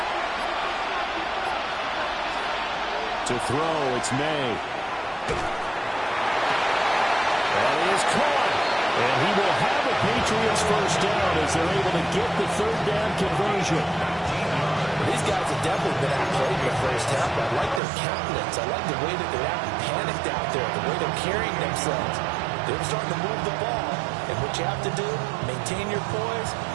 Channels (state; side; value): drops out; left; at 17.8 s